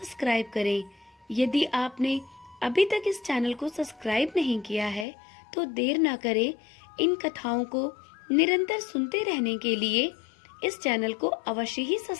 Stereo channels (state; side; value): drops out; right; at 5.1 s